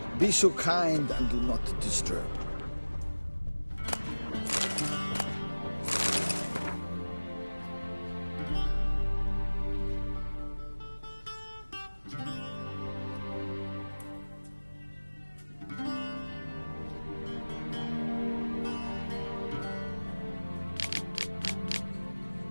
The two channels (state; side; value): inverted; both; correlation -1.00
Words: Be so kind and do not disturb.